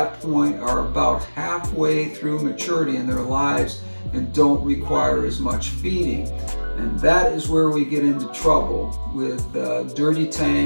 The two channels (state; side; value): inverted; both; correlation -1.00